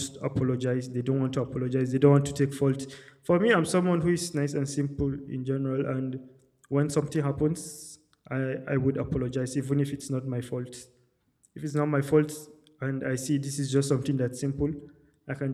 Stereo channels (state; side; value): identical; both; correlation 1.00